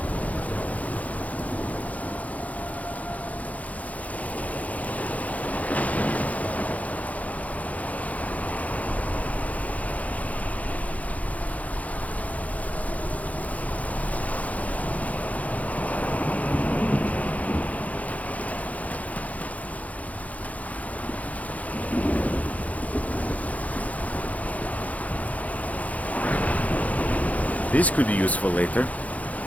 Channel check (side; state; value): right; late; 0.071 ms